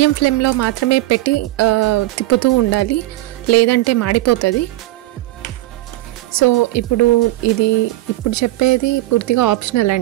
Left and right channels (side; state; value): left; quieter; 17.6 dB